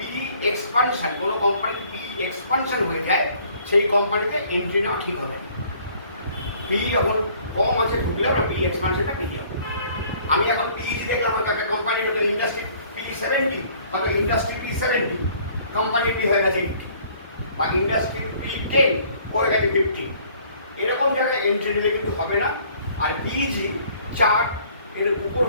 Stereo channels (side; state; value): both; inverted; correlation -0.57